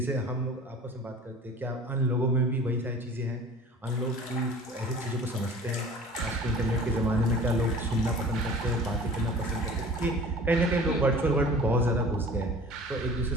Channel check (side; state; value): both; normal; correlation 0.43